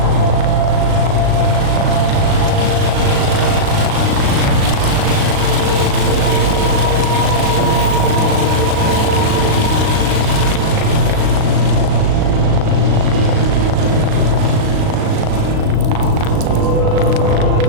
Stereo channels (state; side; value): late; left; 37 ms